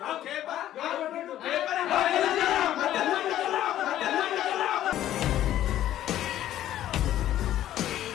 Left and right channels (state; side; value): quieter; right; 12.5 dB